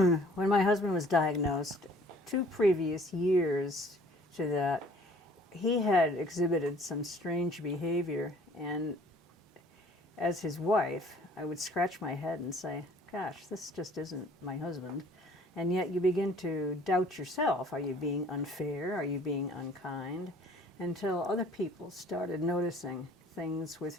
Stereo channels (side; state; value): both; normal; correlation 0.54